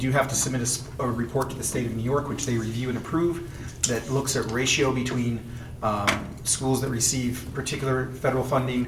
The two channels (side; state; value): both; identical; correlation 1.00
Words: have to submit a report to the state of New York, which they review and approve, that looks at ratio between schools that receive particular federal funding